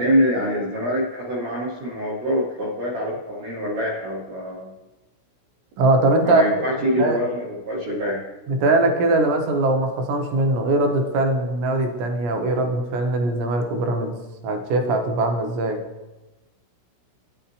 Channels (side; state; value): left; late; 16 ms